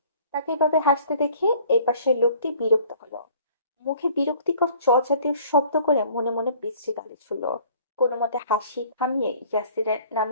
তাকে এভাবে হাসতে দেখে এই পাশের লোকটি বিরক্ত হলো। মুখে বিরক্তিকর চ জাতীয় শব্দ করে মনে মনে বিশ্রী গালি ছুড়ল। কোনো মতে হাসি থামিয়ে ইয়াসিরের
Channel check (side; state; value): both; inverted; correlation -0.54